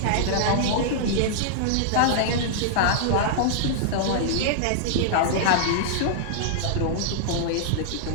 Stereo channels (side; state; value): both; different; correlation -0.01